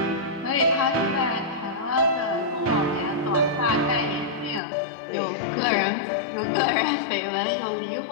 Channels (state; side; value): drops out; right; at 4.6 s